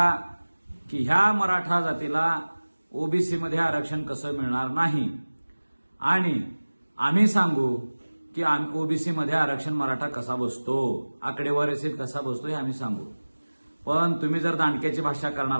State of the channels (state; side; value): inverted; both; correlation -1.00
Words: की ह्या मराठा जातीला ओबीसी मध्ये आरक्षण कसं मिळणार नाही, आणि आम्ही सांगू की ओबीसी मध्ये आरक्षण मराठा कसा बसतो, आकडेवारीसहित कसा बसतो हे आम्ही सांगू। पण तुम्ही जर दांडक्याची भाषा